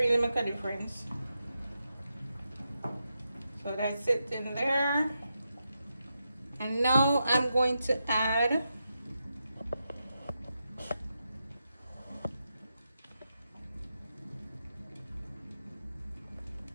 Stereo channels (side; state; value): both; inverted; correlation -0.87